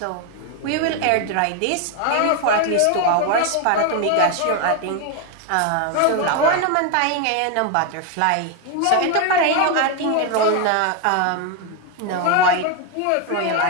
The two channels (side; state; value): both; different; correlation 0.01